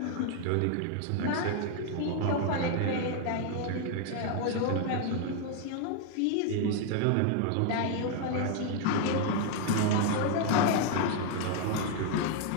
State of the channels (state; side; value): different; both; correlation 0.00